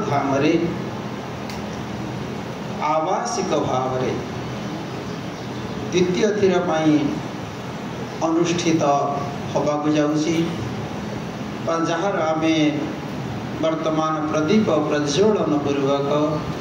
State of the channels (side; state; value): both; identical; correlation 1.00